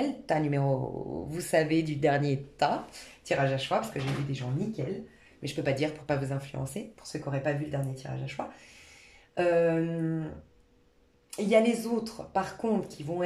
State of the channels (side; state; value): both; identical; correlation 1.00